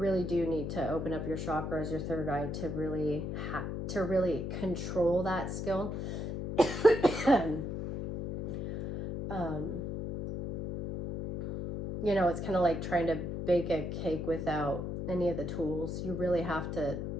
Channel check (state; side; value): noise; left; hum, 4 dB below the sound